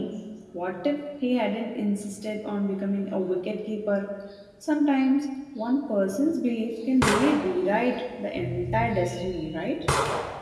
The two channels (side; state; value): both; identical; correlation 1.00